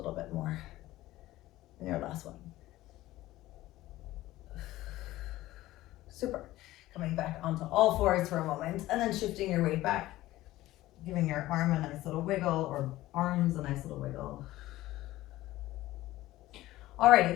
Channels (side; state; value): right; quieter; 16.4 dB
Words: bit more? And your last one. Super. Coming back onto all fours for a moment, and then shifting your weight back, giving your arm a nice little wiggle, or arms a nice little wiggle.